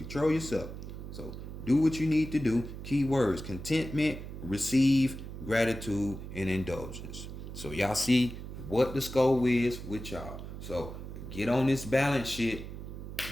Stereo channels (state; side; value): noise; right; hum, 10 dB below the sound